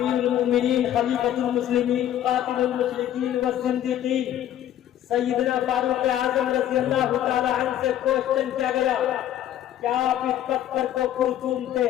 المومنین خلیفۃ المسلمین قاتل المشرکین والزندیقین سیدنا فاروق اعظم رضی اللہ تعالی عنہ سے کوشچن کیا گیا، کیا آپ اس پتھر کو کیوں چومتے؟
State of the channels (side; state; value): right; quieter; 11.6 dB